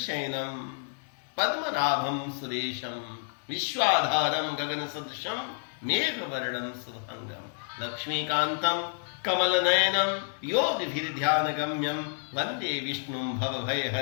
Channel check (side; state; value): right; silent; digital silence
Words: पद्मनाभम सुरेशम विश्वाधारम गगन सदृशम मेघ वर्णम शुभंगम लक्ष्मीकांतम कमल नयनम योगिभिर ध्यान गम्यम वंदे विष्णु भव